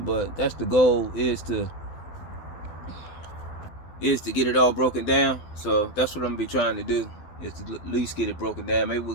But that's the goal, is to get it all broken down. So that's what I'm gonna be trying to do, is to at least get it broken down. Maybe we'll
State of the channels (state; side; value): late; right; 12 ms